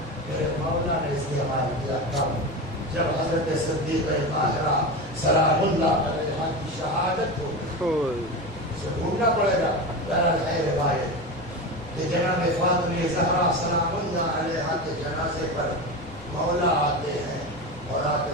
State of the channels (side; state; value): both; normal; correlation 0.23